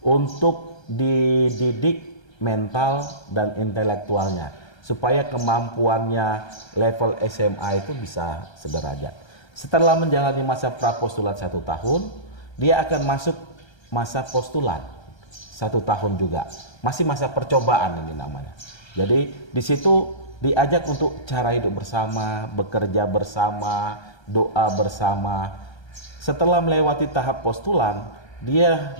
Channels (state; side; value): late; right; 1.3 ms